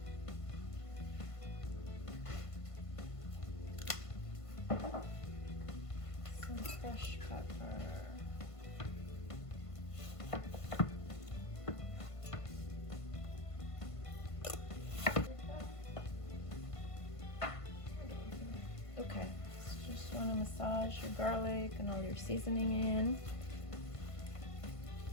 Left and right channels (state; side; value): late; right; 1.5 ms